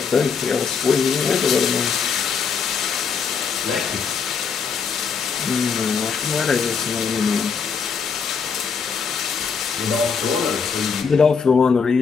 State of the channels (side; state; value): right; quieter; 5.9 dB